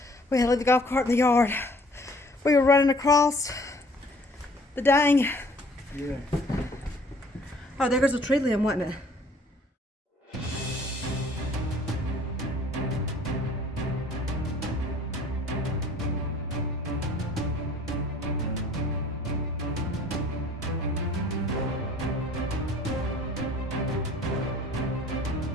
we had to leave the golf cart in the yard. We were running across the dang. Yeah. Oh, there goes a tree limb, wasn't it?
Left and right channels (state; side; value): normal; both; correlation 0.55